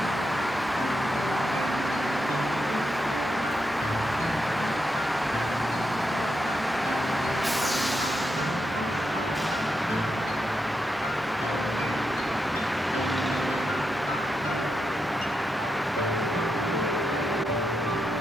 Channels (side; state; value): both; normal; correlation 0.85